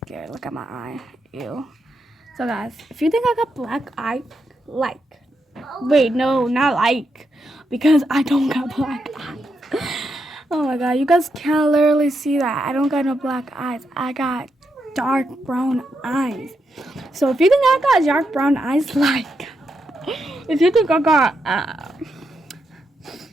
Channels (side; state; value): both; normal; correlation 0.83